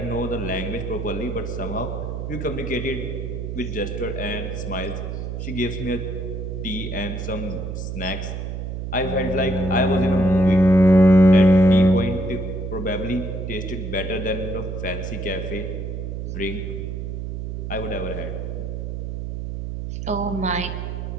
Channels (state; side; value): noise; right; hum, 5 dB below the sound